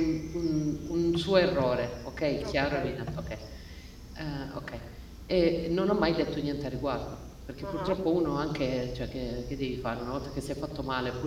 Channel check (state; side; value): identical; both; correlation 1.00